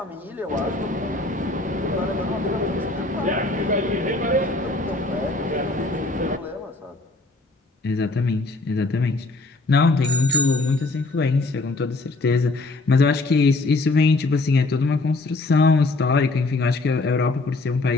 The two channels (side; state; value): right; quieter; 3.1 dB